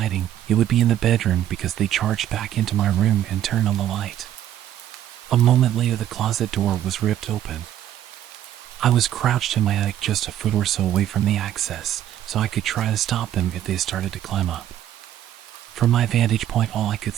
it would be in the bedroom, because they charged back into my room and turned on the light. A moment later, the closet door was ripped open. I was crouched in my attic just a foot or so away from the access, so I could try to stop them if they started to climb up. From my vantage point, all I could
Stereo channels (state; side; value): quieter; left; 11.5 dB